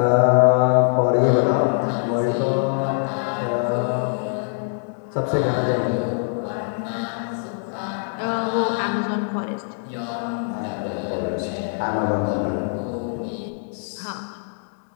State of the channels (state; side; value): silent; right; digital silence